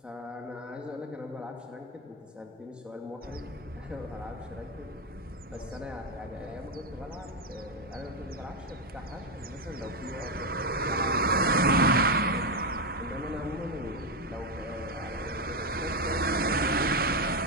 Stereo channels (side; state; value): both; normal; correlation 0.07